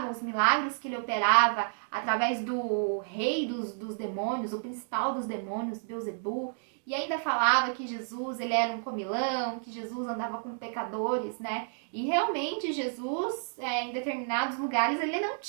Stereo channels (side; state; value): left; silent; digital silence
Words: os milagres que ele operava através do rei dos demônios, o principal dos demônios, Beelzebul, e ainda falava que Jesus ele era um comilão, que Jesus andava com pecadores, E realmente Jesus, em determinados lugares, ele não